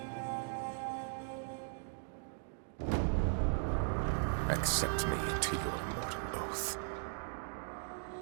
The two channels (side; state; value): left; silent; digital silence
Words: Accept me into your immortal oath.